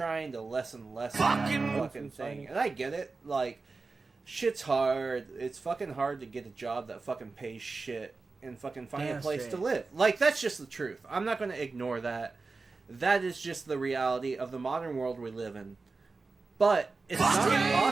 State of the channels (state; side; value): quieter; left; 4.0 dB